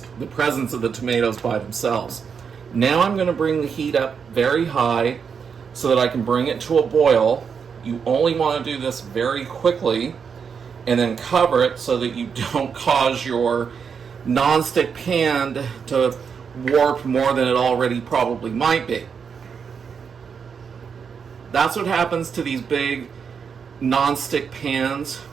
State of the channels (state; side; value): quieter; left; 6.4 dB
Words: the presence of the tomatoes by themselves. Now I'm going to bring the heat up very high so that I can bring it to a boil. You only want to do this very quickly, and then cover it so that you don't cause your nonstick pan to warp more than it already probably might be. That's what happens to these big nonstick pans